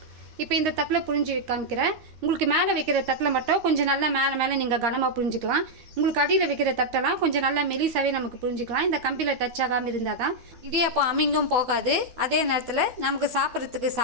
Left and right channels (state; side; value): late; left; 13 ms